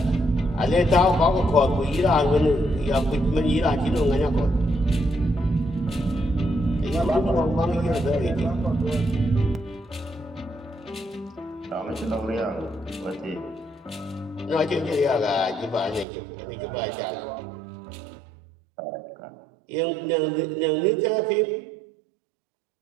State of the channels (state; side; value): drops out; left; at 16.1 s